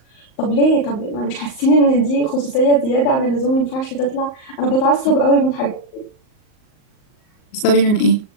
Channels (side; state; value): right; late; 38 ms